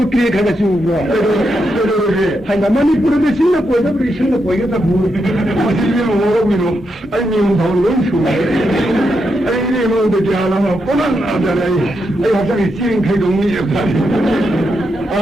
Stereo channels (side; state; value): both; normal; correlation 0.83